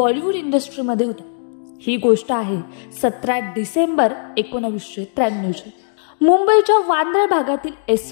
इंडस्ट्रीमध्ये होता. ही गोष्ट आहे 17 डिसेंबर 1993ची. मुंबईच्या वांद्रे भागातील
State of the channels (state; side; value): silent; right; digital silence